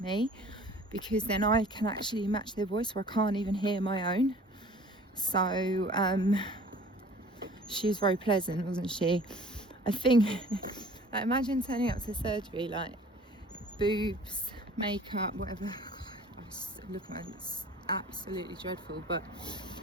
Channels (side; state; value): both; normal; correlation 0.48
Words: me, because then I can actually match their voice where I can't even hear my own. So, she was very pleasant, wasn't she? I think, like, imagine turning up to surgery, like, boobs, makeup, whatever. I was looking at it, it's absolutely dreadful, but